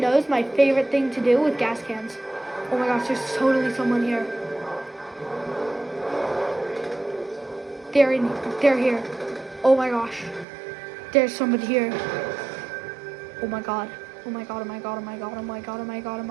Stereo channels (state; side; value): drops out; left; at 10.5 s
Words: my favorite thing to do with gas cans. Oh my gosh, there's totally someone here. They're here. Oh my gosh. There's somebody here. Oh my god. Oh my god, oh my god, oh my god, oh my god, oh my god, oh